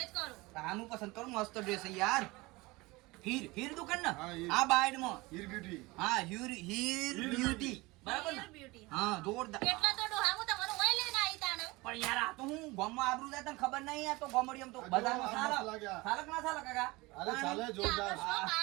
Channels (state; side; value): quieter; left; 22.7 dB